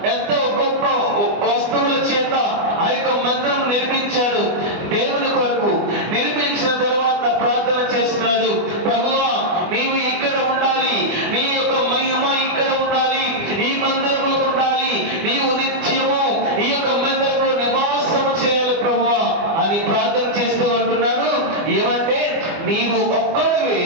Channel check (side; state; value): left; late; 25 ms